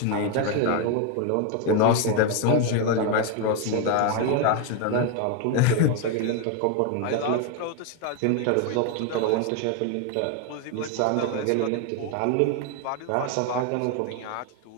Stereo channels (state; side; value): different; both; correlation 0.01